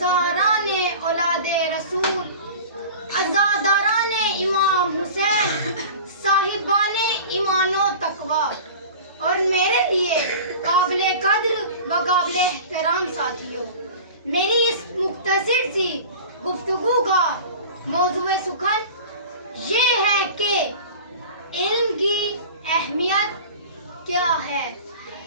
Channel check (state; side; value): inverted; both; correlation -0.38